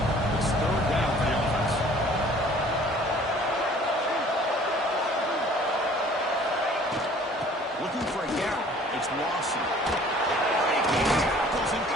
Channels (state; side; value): normal; both; correlation 0.52